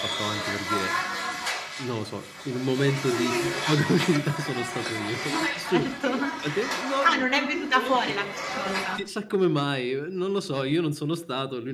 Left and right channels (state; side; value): identical; both; correlation 1.00